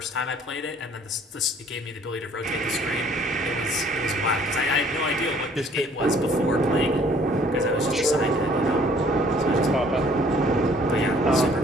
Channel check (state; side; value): normal; both; correlation 0.58